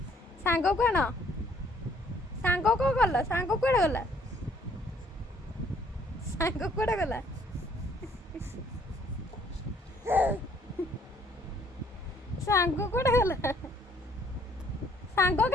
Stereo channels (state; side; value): normal; both; correlation 0.63